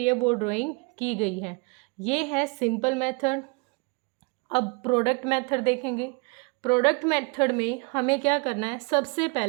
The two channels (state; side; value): quieter; left; 31.1 dB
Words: वो ड्राइंग की गई है, ये है सिंपल मेथड। अब प्रोडक्ट मेथड देखेंगे। प्रोडक्ट मेथड में हमें क्या करना है, सबसे